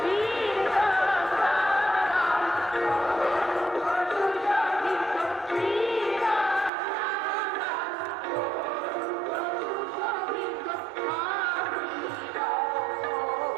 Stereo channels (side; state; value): left; drops out; at 6.7 s